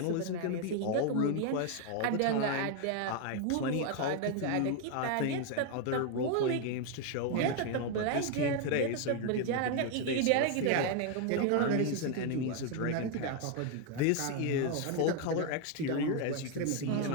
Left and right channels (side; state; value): both; different; correlation 0.01